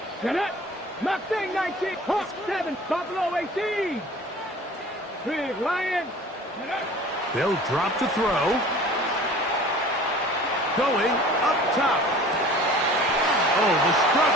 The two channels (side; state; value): both; normal; correlation 0.45